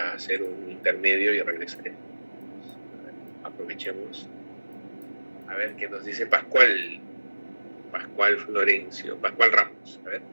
hacer un intermedio y regresaremos. Aprovechemos. A ver qué nos dice Pascual Florencio, Pascual Ramos. A ver.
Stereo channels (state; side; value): inverted; both; correlation -1.00